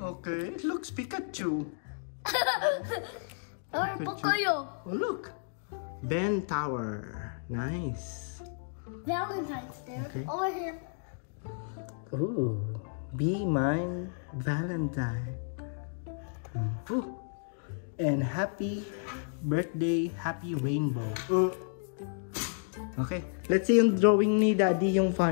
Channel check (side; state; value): right; silent; digital silence